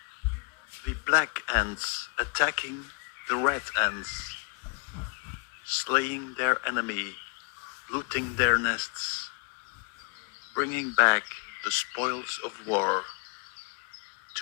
The black ants attacking the red ants, slaying their enemy, looting their nests, bringing back the spoils of war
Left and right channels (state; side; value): quieter; right; 35.7 dB